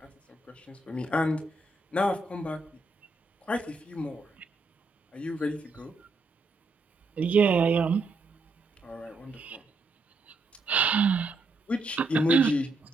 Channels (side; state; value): left; quieter; 3.1 dB